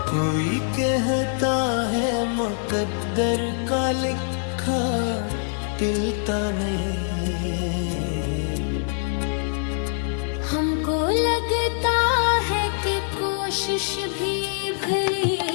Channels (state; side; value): silent; right; 63 dB below the other